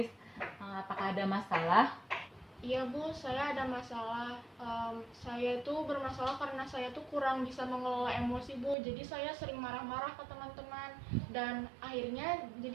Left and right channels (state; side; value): drops out; left; at 8.8 s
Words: Apakah ada masalah? Iya, Bu. Saya ada masalah. Saya itu bermasalah karena saya tuh kurang bisa mengelola emosi, Bu. Jadi saya sering marah-marah ke teman-teman. Dan akhirnya